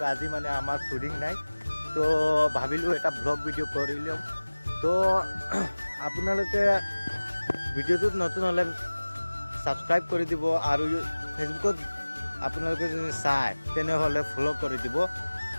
আজি মানে আমাৰ শ্বুটিং নাই। তো ভাবিলোঁ এটা ব্লগ ভিডিঅ' কৰি লওঁ। তো আপোনালোকে ভিডিঅ'টোত নতুন হ'লে ছাবস্ক্ৰাইব কৰি দিব, আৰু ফেচবুকত আপোনালোকে যদি চায় তেনেহ'লে ফ'ল' কৰি দিব।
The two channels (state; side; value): inverted; both; correlation -1.00